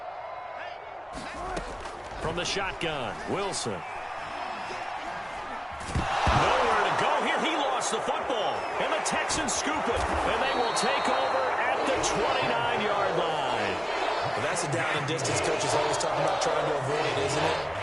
From the shotgun, Wilson. Nowhere to go here. He lost the football. And the Texans scoop it. And they will take over at the 29-yard line. Well, that's a down and distance coaches always talking about trying to avoid, isn't it?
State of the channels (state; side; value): identical; both; correlation 1.00